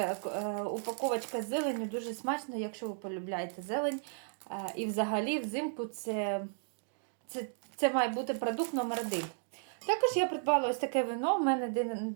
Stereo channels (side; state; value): left; silent; digital silence